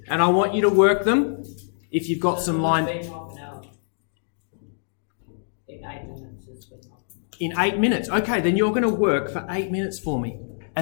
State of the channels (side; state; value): right; silent; digital silence